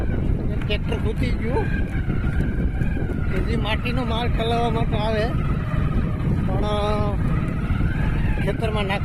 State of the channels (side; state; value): both; identical; correlation 1.00